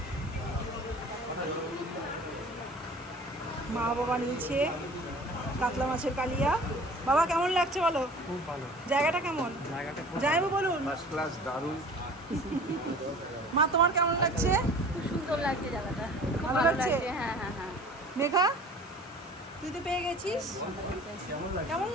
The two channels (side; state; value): both; normal; correlation 0.44